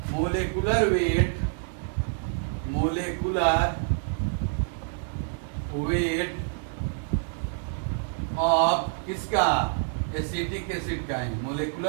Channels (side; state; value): left; silent; 60 dB below the other